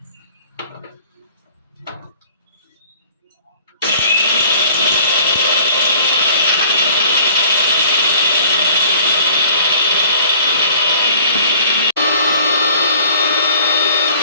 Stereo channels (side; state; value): both; inverted; correlation -0.51